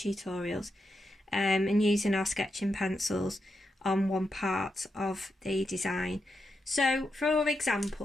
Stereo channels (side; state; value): both; normal; correlation 0.85